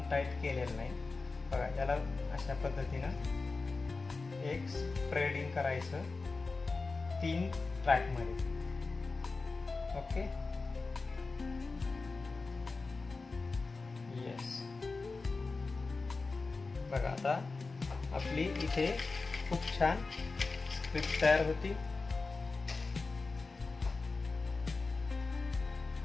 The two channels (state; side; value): quieter; right; 3.9 dB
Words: टाईट केलेलं नाही. बघा, याला अशा पद्धतीनं एक स्प्रेडिंग करायचं 3 ट्रॅकमध्ये. Okay, yes. बघा, आता आपली इथे खूप छान स्क्रिप्ट तयार होती.